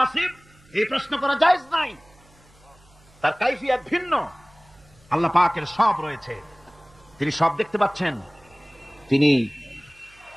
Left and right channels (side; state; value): right; noise; hum, 28 dB below the sound